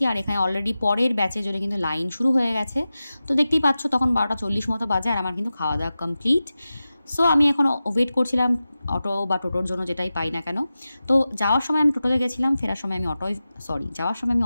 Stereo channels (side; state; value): both; inverted; correlation -0.94